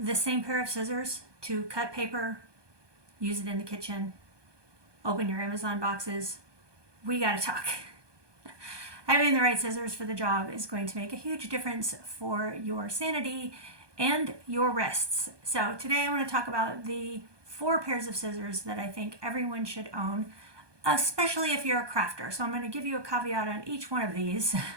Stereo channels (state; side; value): late; left; 1.2 ms